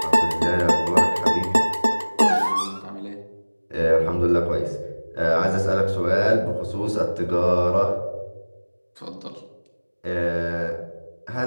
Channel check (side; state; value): both; inverted; correlation -1.00